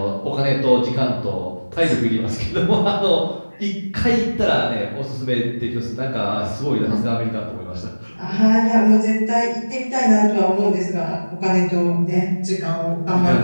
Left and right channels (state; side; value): inverted; both; correlation -1.00